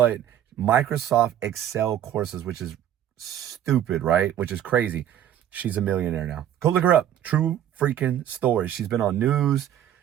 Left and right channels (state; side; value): quieter; left; 10.8 dB